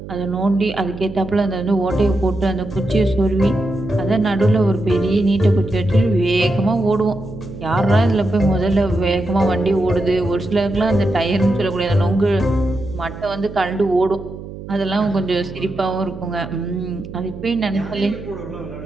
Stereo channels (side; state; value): right; noise; hum, 12 dB below the sound